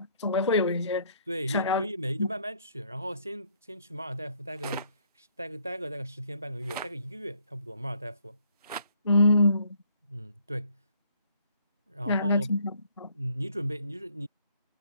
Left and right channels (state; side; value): inverted; both; correlation -0.64